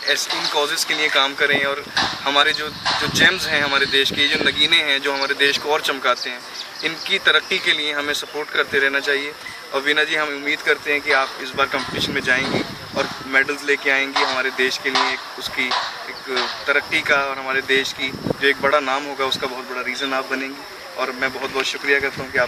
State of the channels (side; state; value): both; identical; correlation 1.00